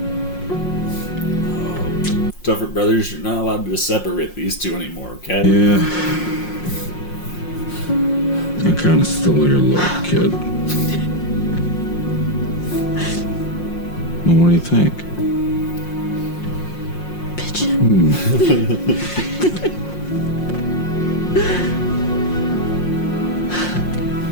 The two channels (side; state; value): right; late; 5.6 ms